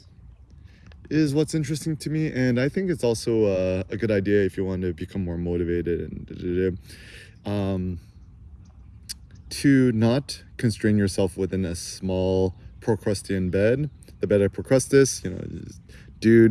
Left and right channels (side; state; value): both; identical; correlation 1.00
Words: is what's interesting to me. And I think it's also a good idea if you want to become more motivated and to not constrain yourself within a small Procrustean bed. The bed of Procrustes,